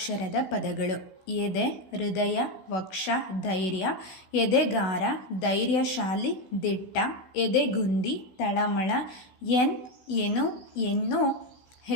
ಪದಗಳು. ಎದೆ, ಹೃದಯ, ವಕ್ಷ, ಧೈರ್ಯ, ಎದೆಗಾರ, ಧೈರ್ಯಶಾಲಿ, ದಿಟ್ಟ, ಎದೆಗುಂದಿ, ತಳಮಳ, ಎನು, ಎನ್ನು,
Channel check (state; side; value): late; right; 16 ms